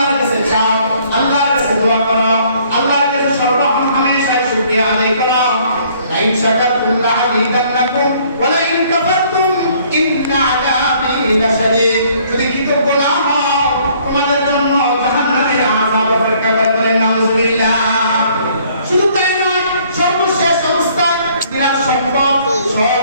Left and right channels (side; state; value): both; inverted; correlation -0.61